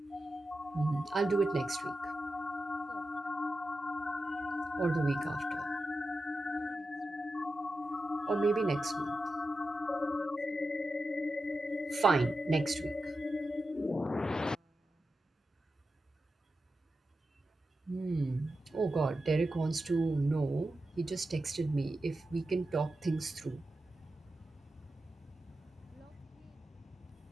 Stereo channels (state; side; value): normal; both; correlation 0.91